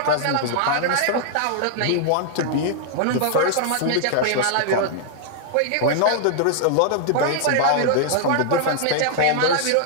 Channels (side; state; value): both; different; correlation -0.01